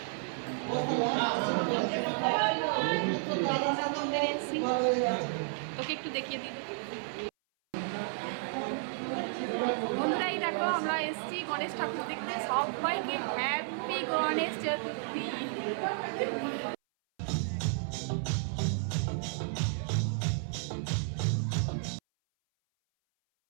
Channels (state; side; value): silent; left; 56 dB below the other